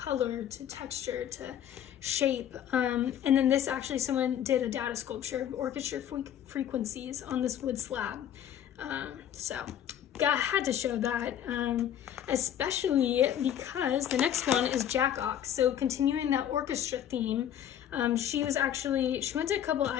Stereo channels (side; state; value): right; quieter; 10.2 dB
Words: to texture, to shape. And then this, actually, someone did a data sculpture of orchestra frequencies on this wood slab. So I had to show that, especially because the next one is Jack Ox. So continuing that orchestra theme, She went to a couple